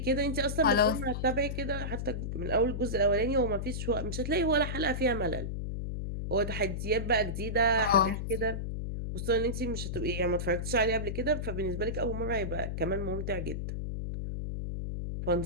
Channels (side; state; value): left; noise; hum, 4 dB below the sound